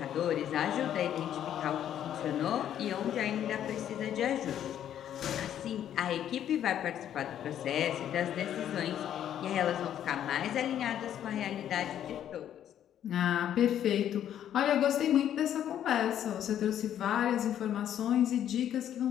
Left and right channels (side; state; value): right; quieter; 10.4 dB